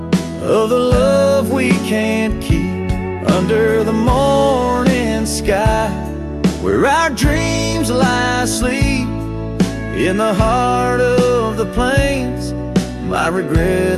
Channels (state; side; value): identical; both; correlation 1.00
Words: the love we can't keep. Under the morning sky, where our dreams lie asleep, in the heart of the plains, my